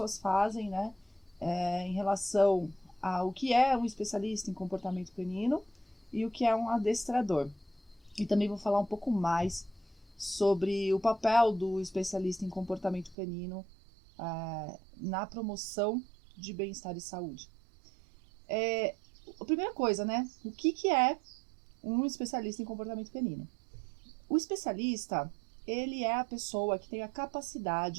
fazem, em relação ao que é um especialista em comportamento canino e o que é um adestrador. E também vou falar um pouco mais sobre o papel do especialista em comportamento canino na promoção de bem-estar e saúde. A primeira coisa, o que é um especialista em comportamento canino? O especialista, ele é a pessoa que tem a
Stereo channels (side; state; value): left; drops out; at 13.2 s